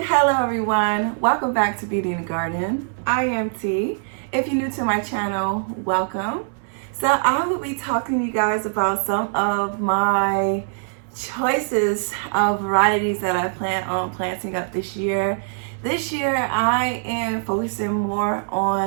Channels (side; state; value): left; silent; 63 dB below the other